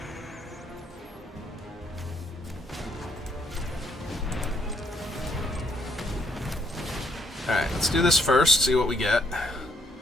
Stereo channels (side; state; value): both; normal; correlation 0.70